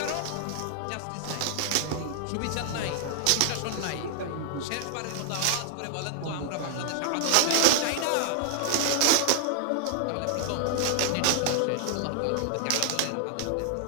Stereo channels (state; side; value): different; both; correlation 0.00